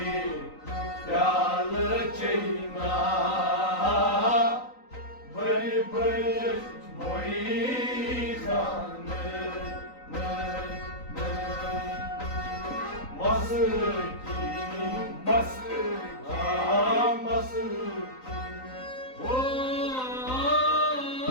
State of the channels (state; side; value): late; right; 3.9 ms